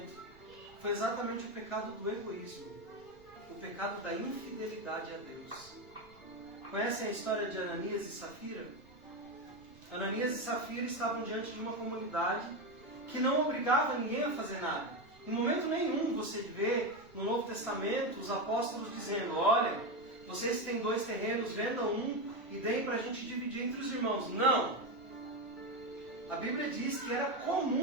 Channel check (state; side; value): noise; right; rumble, 26 dB below the sound